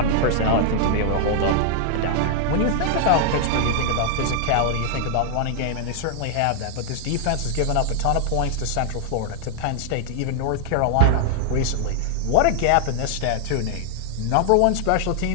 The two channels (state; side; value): different; both; correlation -0.01